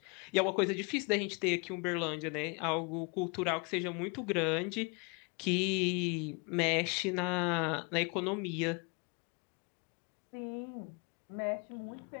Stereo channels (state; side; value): quieter; right; 32.4 dB